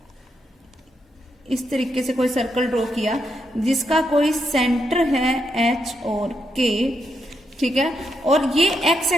इस तरीके से कोई सर्कल ड्रॉ किया जिसका कोई सेंटर है एच और के। ठीक है, और ये एक्स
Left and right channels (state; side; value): normal; both; correlation 0.81